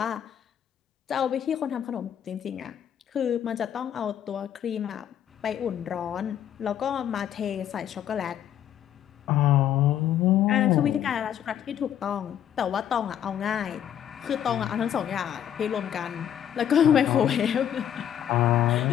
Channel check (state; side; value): quieter; right; 10.0 dB